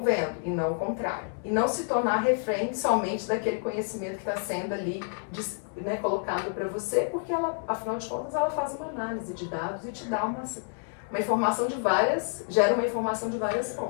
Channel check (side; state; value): right; silent; 59 dB below the other